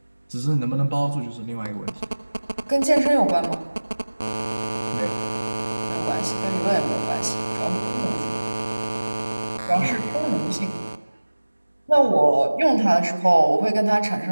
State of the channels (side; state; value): both; inverted; correlation -1.00